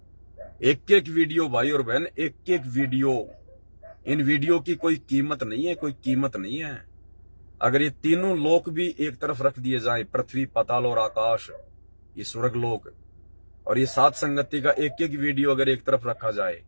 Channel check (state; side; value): inverted; both; correlation -1.00